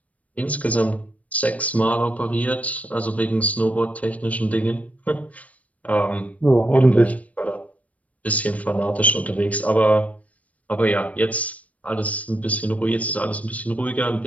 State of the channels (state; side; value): late; right; 0.069 ms